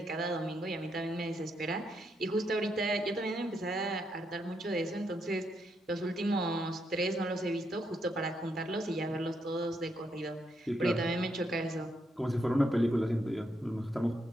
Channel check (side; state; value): both; normal; correlation 0.78